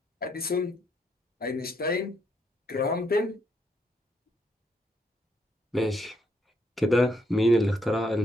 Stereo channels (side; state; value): both; normal; correlation 0.74